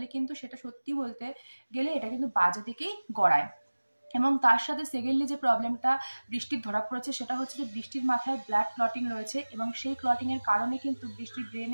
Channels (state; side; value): inverted; both; correlation -1.00